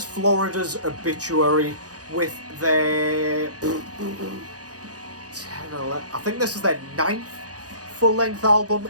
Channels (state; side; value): late; left; 0.67 ms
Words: Florida's Obituary with their 10, 11, I think this is their 9th full-length album